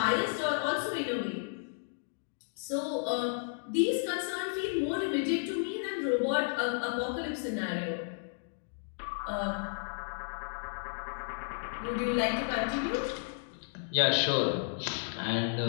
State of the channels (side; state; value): right; silent; digital silence